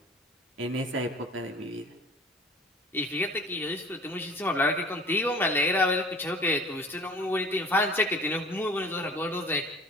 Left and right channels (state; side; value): normal; both; correlation 0.46